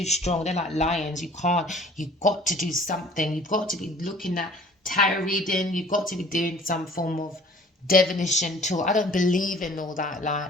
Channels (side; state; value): both; normal; correlation 0.51